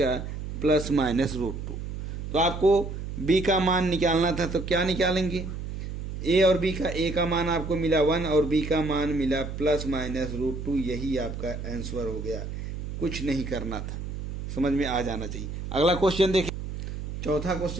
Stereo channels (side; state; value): right; noise; hum, 6 dB below the sound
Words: प्लस माइनस √2। तो आपको b का मान निकालना था तो क्या निकालेंगे? a और b का, a का मान आपको मिला 1 और b का मान मिला प्लस माइनस √2, यही आपका आंसर हो गया। कुछ नहीं करना था, समझ में आ जाना चाहिए। अगला क्वेश्चन देखिए, चौथा